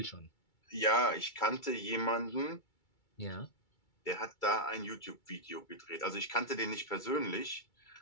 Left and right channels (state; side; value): late; right; 2.3 ms